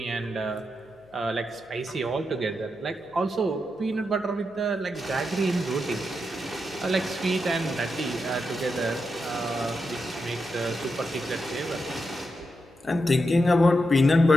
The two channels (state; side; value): noise; left; hum, 30 dB below the sound